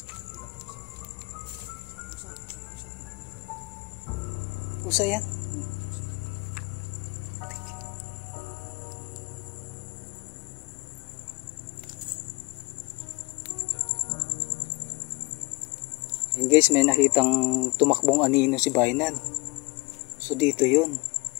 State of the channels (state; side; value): quieter; right; 25.7 dB